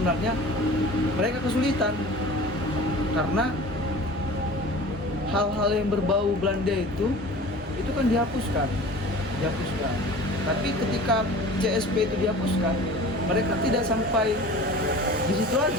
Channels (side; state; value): both; normal; correlation 0.41